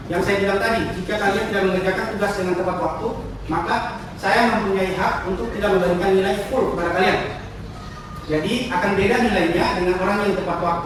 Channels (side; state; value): both; identical; correlation 1.00